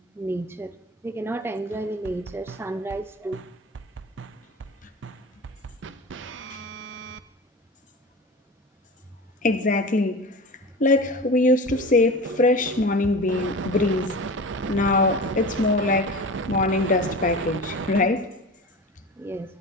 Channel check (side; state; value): both; normal; correlation 0.32